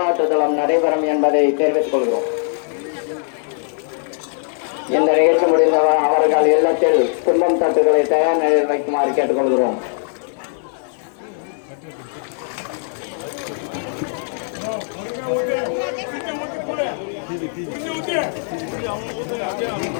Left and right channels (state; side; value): silent; right; digital silence